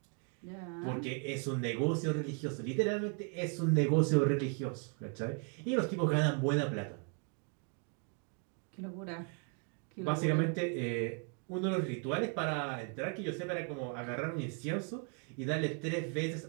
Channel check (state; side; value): quieter; left; 38.9 dB